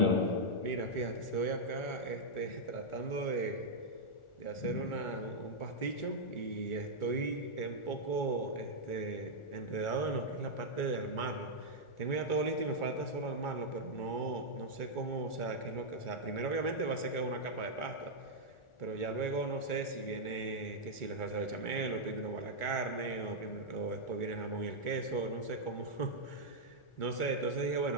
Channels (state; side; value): late; right; 1.4 ms